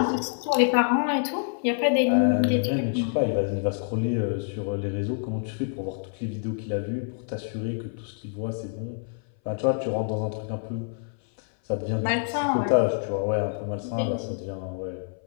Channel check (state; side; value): silent; right; 59 dB below the other